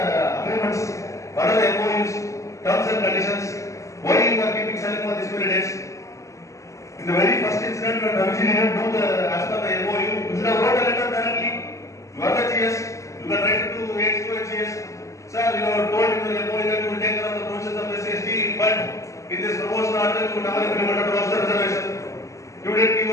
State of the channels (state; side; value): late; right; 0.15 ms